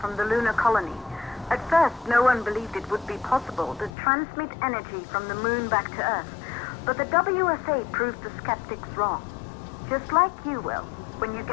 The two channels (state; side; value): drops out; right; at 3.9 s